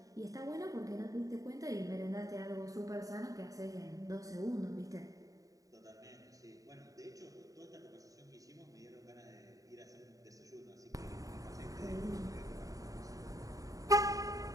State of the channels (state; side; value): late; left; 0.16 ms